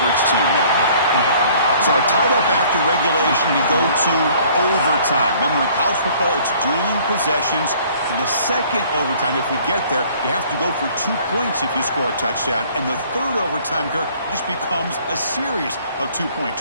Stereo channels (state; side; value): inverted; both; correlation -0.56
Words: team there. So tied up after regulation, we go to overtime. Remember, in college football, it's dueling possessions. In the second overtime, if we get there, you have to go for 2 points if you score a touchdown. And the third overtime, Kirk, just becomes a series of 2-point